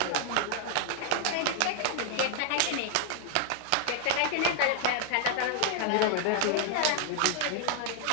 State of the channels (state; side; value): different; both; correlation 0.00